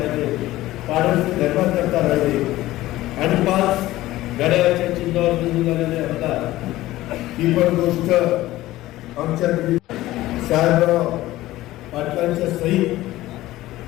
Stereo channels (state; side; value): quieter; right; 16.4 dB